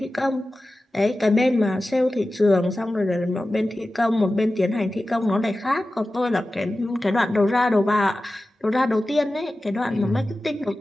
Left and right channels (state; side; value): normal; both; correlation 0.95